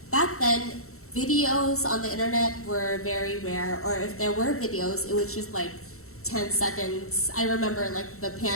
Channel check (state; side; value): late; right; 0.63 ms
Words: back then, videos on the internet were very rare, or if there were videos, it was just like 10 seconds. I remember like the